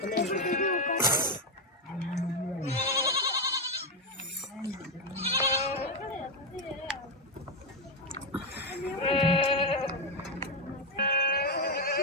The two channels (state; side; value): normal; both; correlation 0.05